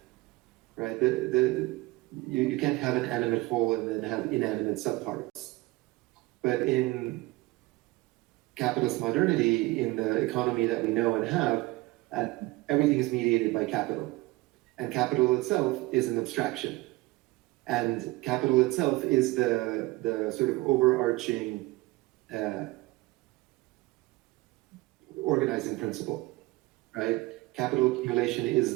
right? You can't have an animate whole and then have inanimate subparts. But in capitalist modernity, in the economy that we know and have, everything is mediated by capital. And capital itself is an abstraction. And capital itself is the sort of overarching organizing principle, right? Capital accumulation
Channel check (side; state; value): left; quieter; 20.8 dB